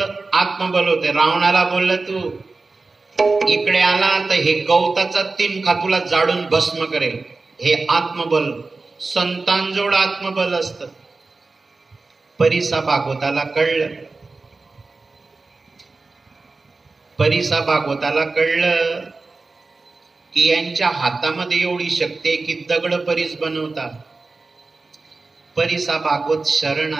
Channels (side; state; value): left; quieter; 3.7 dB